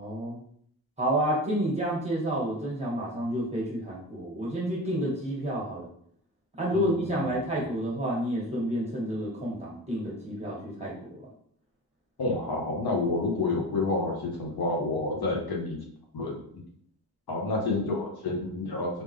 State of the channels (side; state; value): both; normal; correlation 0.24